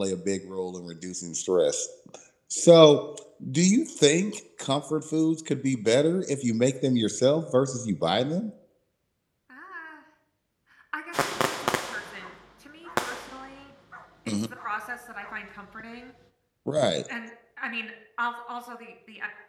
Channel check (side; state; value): both; identical; correlation 1.00